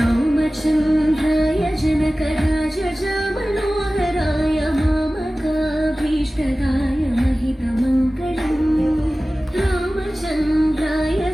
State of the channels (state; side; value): normal; both; correlation 0.97